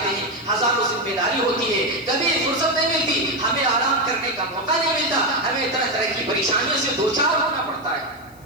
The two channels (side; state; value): left; noise; hiss, 28 dB below the sound